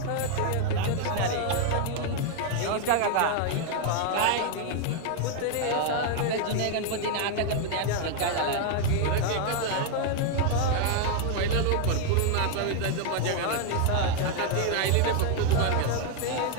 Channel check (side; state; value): both; different; correlation 0.00